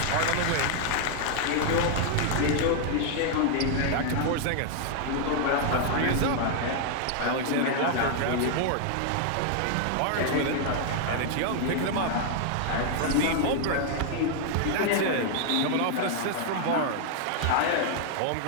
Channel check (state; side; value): different; both; correlation 0.00